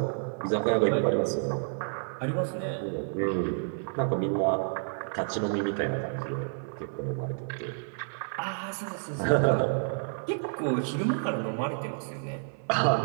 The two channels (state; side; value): silent; left; 58 dB below the other